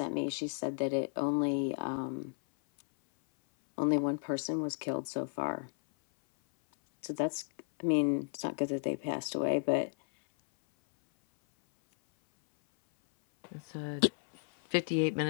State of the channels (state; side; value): silent; right; 56 dB below the other